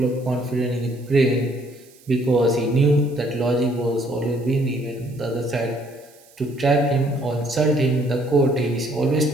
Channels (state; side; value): noise; right; hiss, 27 dB below the sound